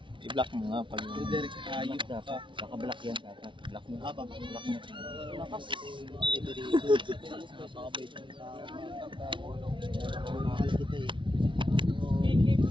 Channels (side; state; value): left; late; 0.24 ms